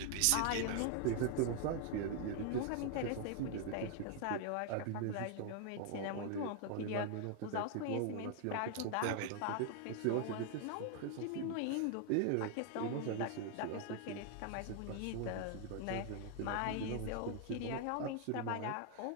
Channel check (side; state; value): both; different; correlation 0.00